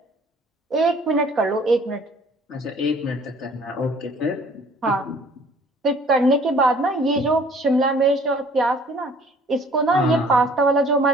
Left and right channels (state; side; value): normal; both; correlation 0.54